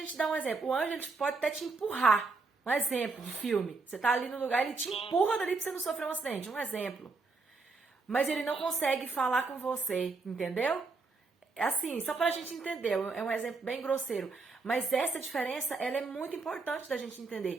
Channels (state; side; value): quieter; left; 4.1 dB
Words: dar um exemplo. O anjo ele pode até te empurrar. Um exemplo de filme. Você tá ali no lugar, ele te empurra dali pra você não sofrer um acidente. Um exemplo. Mas ele não consegue falar com você, entendeu? Assim, só pra gente entender. É um exemplo bem grosseiro. Mas essa diferença, ela é muito importante da gente